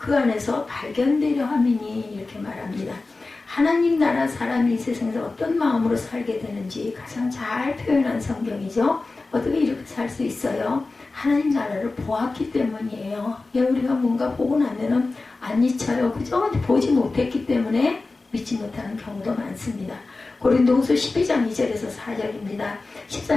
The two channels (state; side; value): quieter; right; 3.5 dB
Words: 안에서 발견되려 함이니 이렇게 말합니다. 하나님 나라 사람이 이 세상에서 어떤 마음으로 살게 되는지 가장 잘 표현한 성경이죠. 어떻게 이렇게 살 수 있어요? 하나님 나라를 보았기 때문이에요. 우리가 뭔가 보고 나면은 안 잊혀요. 그죠? 보지 못했기 때문에 믿지 못하는 경우도 많습니다. 고린도후서 12장 2절에서 4절입니다.